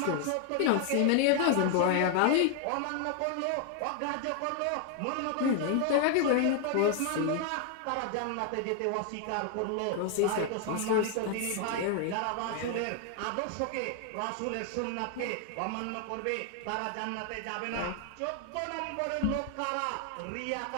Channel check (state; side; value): different; both; correlation 0.00